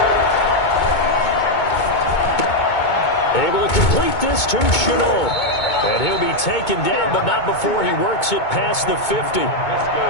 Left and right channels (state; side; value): late; right; 2.2 ms